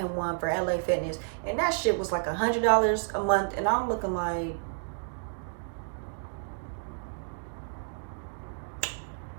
one for LA Fitness, and that shit was like $100 a month. And I'm looking like,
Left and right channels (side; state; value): left; silent; digital silence